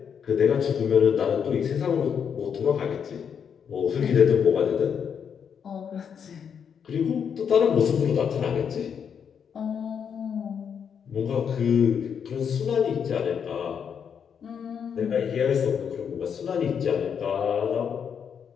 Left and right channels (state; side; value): quieter; right; 7.4 dB